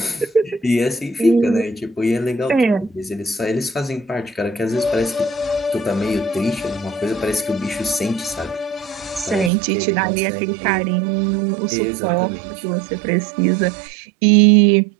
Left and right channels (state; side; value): drops out; left; at 9.5 s